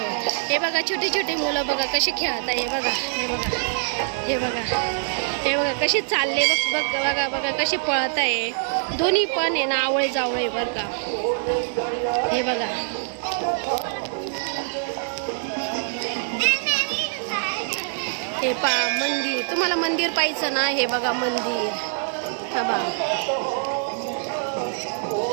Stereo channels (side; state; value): left; silent; digital silence